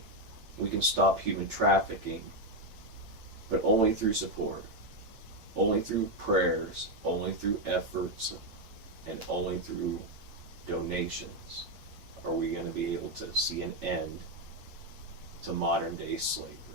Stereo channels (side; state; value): left; late; 9.0 ms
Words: we can stop human trafficking, but only through support, only through prayers, only through efforts, and only through donations are we going to be able to see an end to modern day slavery.